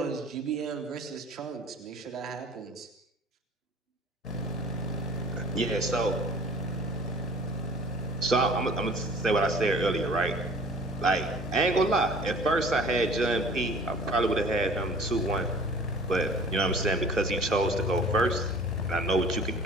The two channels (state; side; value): normal; both; correlation 0.48